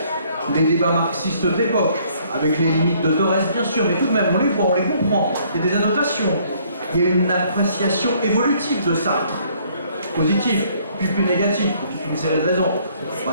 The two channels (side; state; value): both; inverted; correlation -0.63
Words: les débats marxistes de l'époque, avec les limites de Thorez, bien sûr, mais tout de même, on les voit, on les comprend. Il y a des annotations. Il y a une appréciation évolutive de Sartre, positive, puis plus négative, pour toute une série de raisons. On va